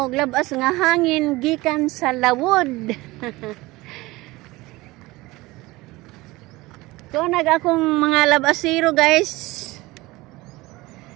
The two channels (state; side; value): quieter; left; 20.5 dB